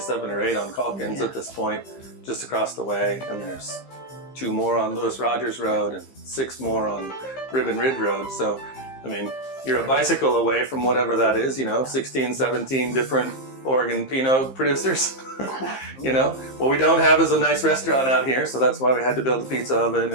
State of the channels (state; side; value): late; right; 15 ms